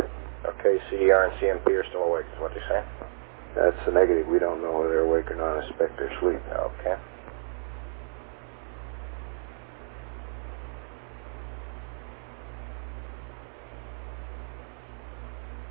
Okay, CDR and CMP are still awake, is what they say? That's a negative. We don't know whether they're awake or not. I suspect they're asleep. Okay.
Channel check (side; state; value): left; silent; digital silence